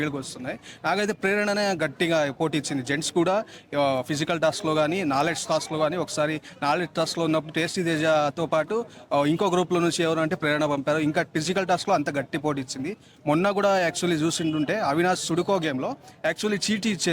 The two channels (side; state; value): both; identical; correlation 1.00